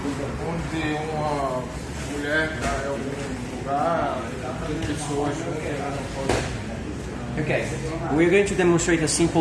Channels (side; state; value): both; identical; correlation 1.00